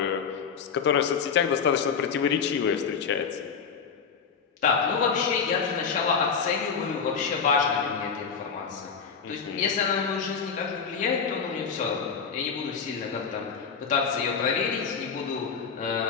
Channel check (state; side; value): quieter; right; 6.2 dB